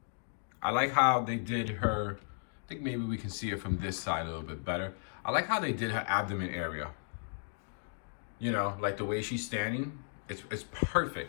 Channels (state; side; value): silent; right; digital silence